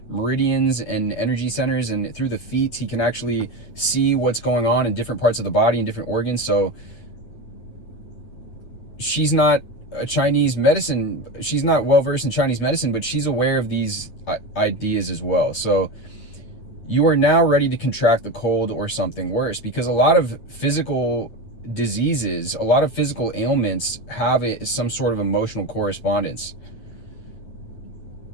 meridians and energy centers, and through the feet he can actually see what's going on in different parts of the body and different organs. So she's not a Chinese medicine, she's not well versed in Chinese medicine, but she's aware of these ideas as well. So you are now ready to contract the cold or something worse, because a lot of physical diseases, a lot of physical ailments have some sort of emotional correspondence.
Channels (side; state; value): right; late; 8.9 ms